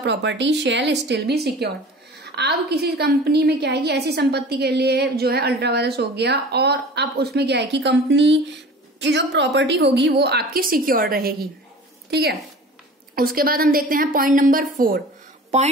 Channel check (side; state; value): both; normal; correlation 0.41